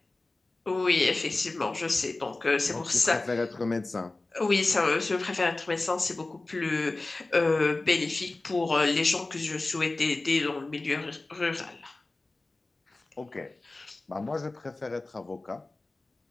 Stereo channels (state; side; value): quieter; right; 3.2 dB